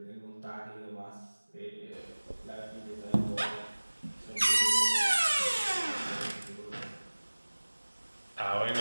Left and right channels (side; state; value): both; inverted; correlation -1.00